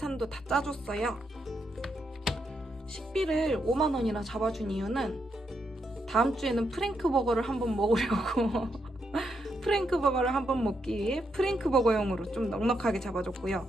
다 짜줬어요. 식비를 5만 원이나 잡아준 이유는 다음 주에는 프랭크버거를 한번 먹으려고 프랭크버거를 한번 먹기 위해 프랭크버거용으로 좀 넉넉하게 잡아줬고요.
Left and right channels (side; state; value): both; normal; correlation 0.80